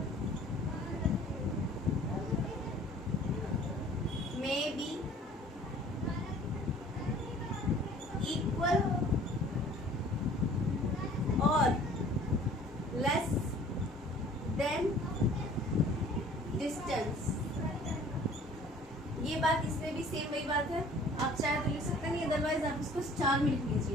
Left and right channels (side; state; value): both; normal; correlation 0.51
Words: में बी इक्वल और लेस देन डिस्टेंस। ये बात इसमें भी सेम वही बात है, आप चाहे तो लिख सकते हैं, अदरवाइज आप इसको स्टार में लिख